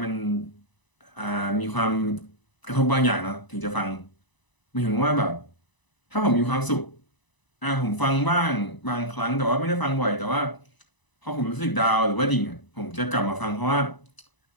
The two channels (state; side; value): late; right; 1.0 ms